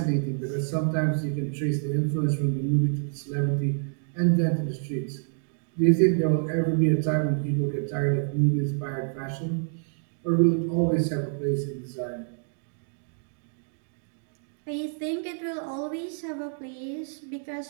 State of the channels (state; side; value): silent; left; 60 dB below the other